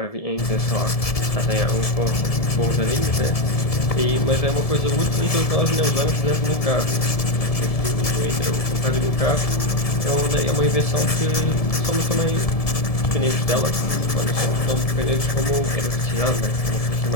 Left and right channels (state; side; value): late; right; 1.7 ms